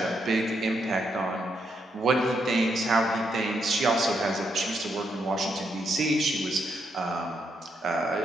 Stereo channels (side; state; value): both; normal; correlation 0.78